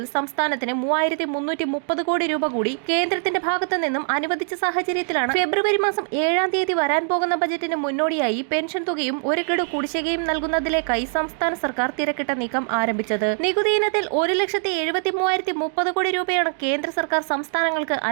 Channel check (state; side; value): silent; left; 61 dB below the other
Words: സംസ്ഥാനത്തിന് 3330 കോടി രൂപ കൂടി കേന്ദ്രത്തിന്റെ ഭാഗത്തു നിന്നും അനുവദിച്ച സാഹചര്യത്തിലാണ് ഫെബ്രുവരി മാസം 7-ാം തീയതി വരാൻ പോകുന്ന ബജറ്റിന് മുന്നോടിയായി പെൻഷൻ തുകയും ഒരു ഗഡു കുടിശ്ശികയും നൽകുന്നതിലേക്കായി സംസ്ഥാന സർക്കാർ തിരക്കിട്ട നീക്കം ആരംഭിച്ചത്. നികുതി ഇനത്തിൽ 1,73,030 കോടി രൂപയാണ് കേന്ദ്ര സർക്കാർ സംസ്ഥാനങ്ങൾക്ക്